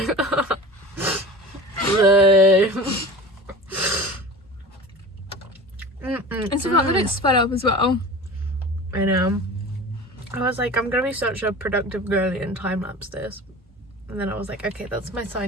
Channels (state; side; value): normal; both; correlation 0.36